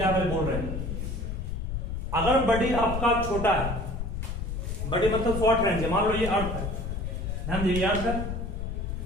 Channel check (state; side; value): noise; left; rumble, 4 dB below the sound